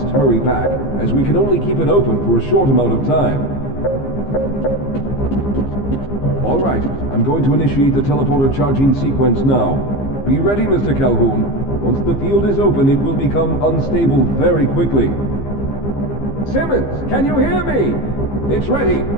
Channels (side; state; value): right; late; 15 ms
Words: hurry back, as we can only keep it open for a short amount of time. All right, I'm going to initiate the teleporter charging sequence now. Be ready, Mr. Calhoun. Once the field is open, it will become unstable very quickly. Simmons, can you hear me? It's ready.